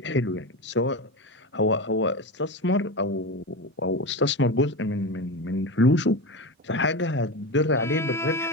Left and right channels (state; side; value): normal; both; correlation 0.21